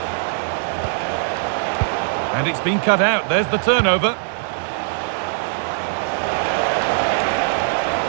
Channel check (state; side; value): silent; left; digital silence